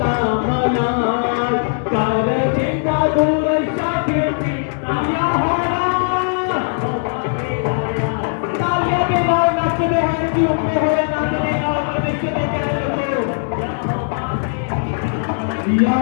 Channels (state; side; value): silent; right; 67 dB below the other